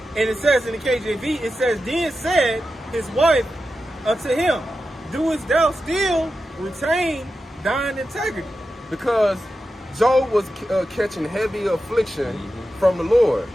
And it says in the KJV, it says, then said his wife unto him, doest thou still retain thine integrity? Because Job was catching heavy affliction from the Lord.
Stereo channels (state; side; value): normal; both; correlation 0.91